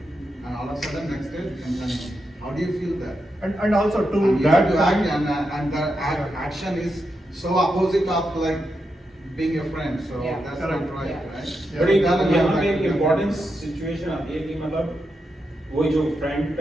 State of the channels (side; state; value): both; normal; correlation 0.85